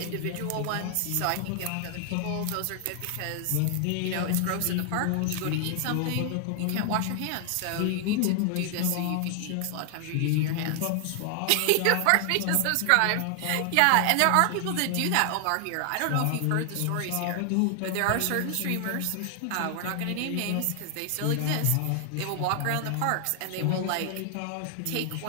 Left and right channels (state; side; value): different; both; correlation 0.00